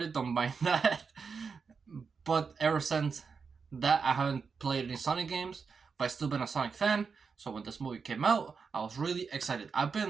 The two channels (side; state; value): left; quieter; 5.4 dB